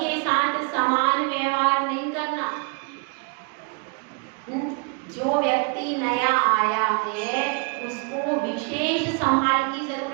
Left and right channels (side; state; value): left; quieter; 34.3 dB